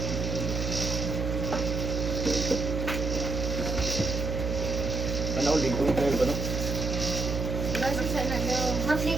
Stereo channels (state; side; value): noise; right; hum, 2 dB below the sound